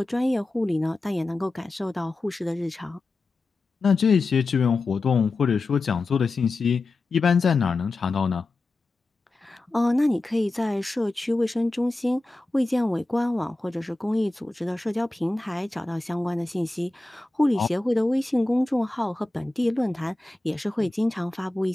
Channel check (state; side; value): quieter; right; 3.0 dB